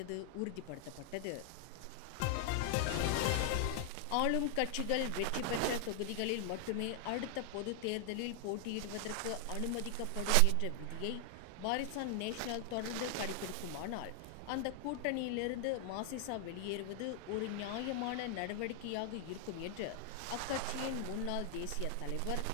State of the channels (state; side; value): different; both; correlation 0.00